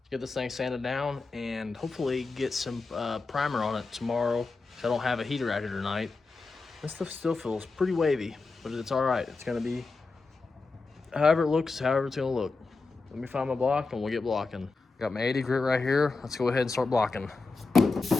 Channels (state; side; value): quieter; right; 4.0 dB